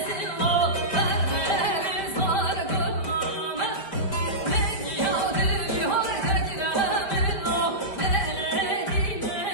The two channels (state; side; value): late; right; 5.0 ms